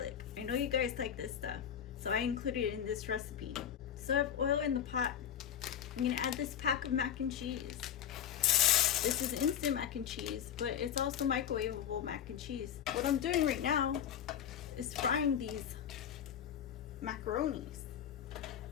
I know you guys like this stuff, so I included it in this recipe. So I have oil in the pot. I'm gonna add this pack of mac and cheese. This is instant mac and cheese, but it's also microwavable mac and cheese. What I'm doing right now is frying these macaronis.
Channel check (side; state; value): right; quieter; 9.3 dB